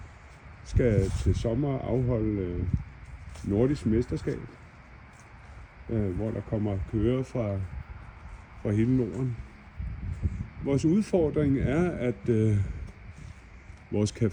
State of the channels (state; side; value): identical; both; correlation 1.00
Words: skal til sommer afholde nordisk mesterskab, hvor der kommer kører fra hele Norden. Vores udfordring er, at vores